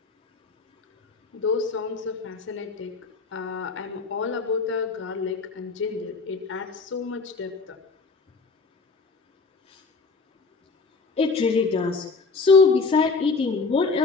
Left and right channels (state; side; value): quieter; right; 4.4 dB